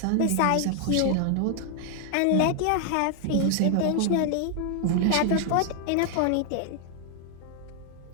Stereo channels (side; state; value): both; different; correlation 0.00